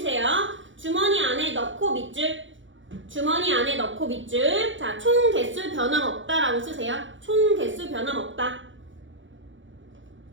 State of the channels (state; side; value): late; left; 0.56 ms